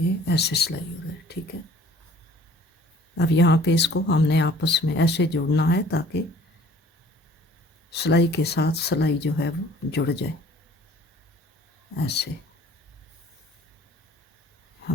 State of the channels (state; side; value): normal; both; correlation 0.53